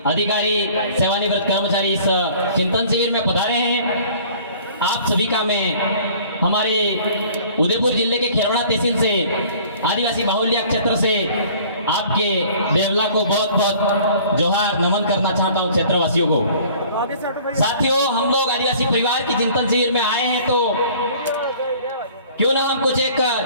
अधिकारी, सेवानिवृत्त कर्मचारी इस चिंतन शिविर में पधारे हैं। आप सभी का मैं हमारे उदयपुर जिले के खेरवड़ा तहसील से आदिवासी बाहुल्य क्षेत्र से आपके देवला को बहुत बहुत जोहार नमन करना चाहता हूं क्षेत्रवासियों को। साथियों, हम लोग आदिवासी परिवार की चिंतन शिविर में आए हैं तो क्यों ना हम कुछ एक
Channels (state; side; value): inverted; both; correlation -0.51